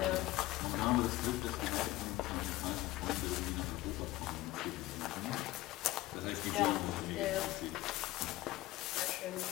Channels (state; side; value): quieter; right; 17.5 dB